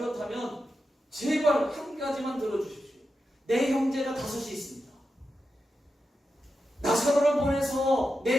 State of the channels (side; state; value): both; normal; correlation 0.89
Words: 제발 한 가지만 들어주십시오. 내 형제가 5이 있습니다. 나사로를 보내서